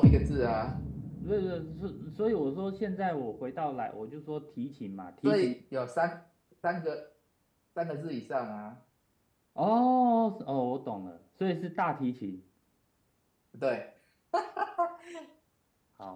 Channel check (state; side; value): identical; both; correlation 1.00